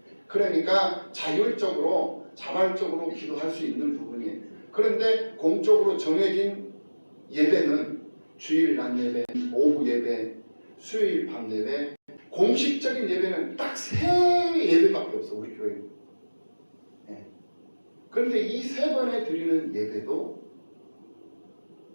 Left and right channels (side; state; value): both; inverted; correlation -1.00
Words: 그러니까 자율적으로 자발적으로 기도할 수 있는 부분이에요. 그런데 공적으로 정해진 예배는 주일 낮 예배, 오후 예배, 수요일 밤 예배, 공식적인 예배는 딱 3예배밖에 없어, 우리 교회는. 네. 그런데 이 3번에 드리는 예배도